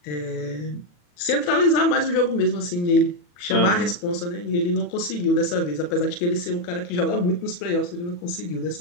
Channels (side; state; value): right; late; 40 ms